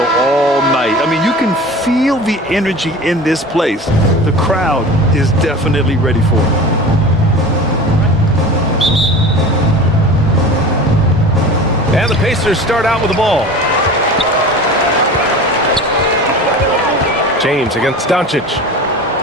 all night. I mean, you can feel the energy in this place. The crowd is definitely ready for it. And the Pacers start out with the ball. James against Doncic.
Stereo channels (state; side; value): normal; both; correlation 0.35